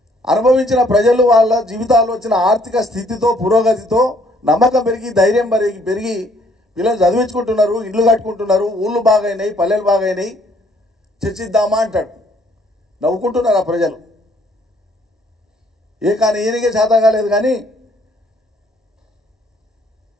అనుభవించిన ప్రజలు వాళ్ళ జీవితాల్లో వచ్చిన ఆర్థిక స్థితితో, పురోగతితో నమ్మకం పెరిగి, ధైర్యం పెరిగి పిల్లలు చదివించుకుంటున్నారు, ఇండ్లు కట్టుకుంటున్నారు, ఊళ్ళు బాగైనాయి, పల్లెలు బాగైనాయి, చర్చిద్దామా అంటాడు. నవ్వుకుంటున్నారు ఆ ప్రజలు. కానీ ఈయనకే చేత కాలేదు కానీ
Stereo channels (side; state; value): both; normal; correlation 0.64